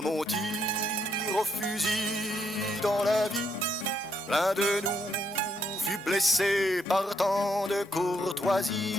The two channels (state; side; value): normal; both; correlation 0.74